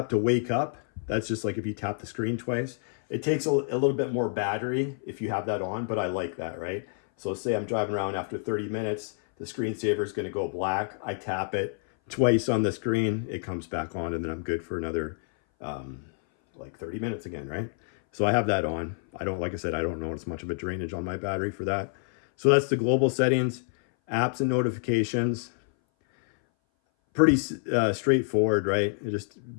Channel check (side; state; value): right; silent; 58 dB below the other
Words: to wake up. That's just like if you tap the screen twice. It takes a little bit more battery if you have that on, but I like that, right? So say I'm driving around after 30 minutes, the screensaver is going to go black. I tap it twice on the screen, it comes back on, and then I'm good for another like 30 minutes again, right? So I have that on. Like I said, I don't notice much of a drainage on my battery for that. So that's the global settings, apps and notifications. Pretty straightforward, right? It just